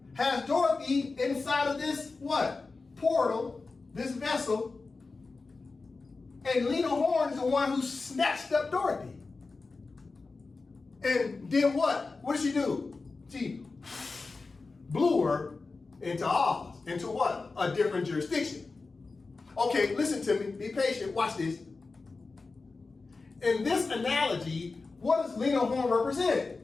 has Dorothy inside of this, what? Portal, this vessel. And Lena Horne is the one who snatched up Dorothy. And did what? What did she do? She blew her into Oz. Into what? A different jurisdiction. Okay, listen to me. Be patient. Watch this. In this analogy, what does Lena Horne represent?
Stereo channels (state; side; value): quieter; right; 3.9 dB